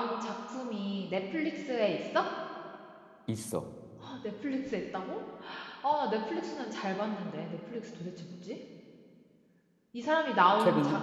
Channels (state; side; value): identical; both; correlation 1.00